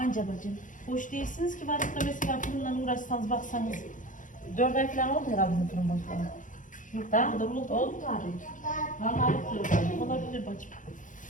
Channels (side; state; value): right; late; 0.38 ms